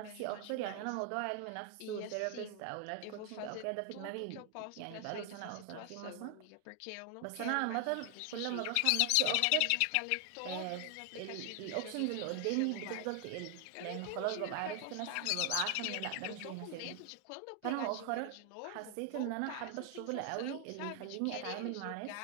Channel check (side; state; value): both; different; correlation 0.00